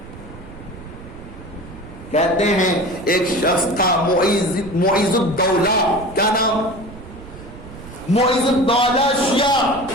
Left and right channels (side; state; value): right; noise; rumble, 16 dB below the sound